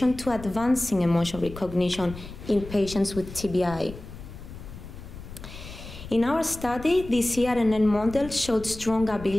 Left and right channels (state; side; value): noise; left; rumble, 13 dB below the sound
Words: to advancing emotion recognition in patients with TBI. In our study, the CRNN model showed strong